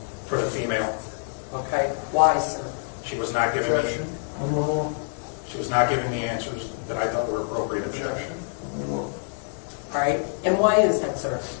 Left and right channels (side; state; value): right; silent; 60 dB below the other